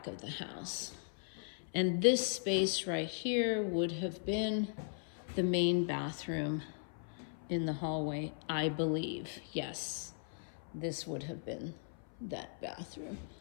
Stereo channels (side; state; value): right; silent; 53 dB below the other